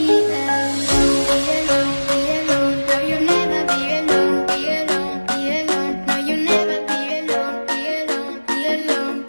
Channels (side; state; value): both; inverted; correlation -1.00